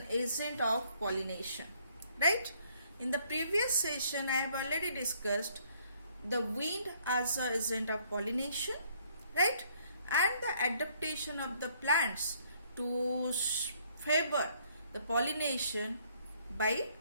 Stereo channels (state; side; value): inverted; both; correlation -0.65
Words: agent of pollination. Right? In the previous session I have already discussed the wind as an agent of pollination, right? And the adaptation of the plants to favor the pollination by